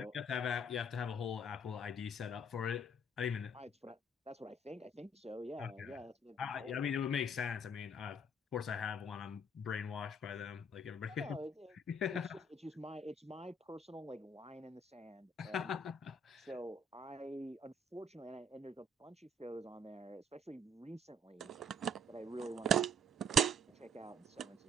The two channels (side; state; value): both; normal; correlation 0.60